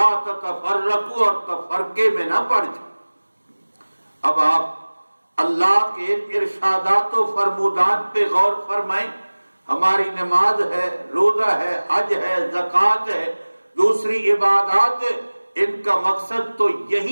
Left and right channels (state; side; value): inverted; both; correlation -1.00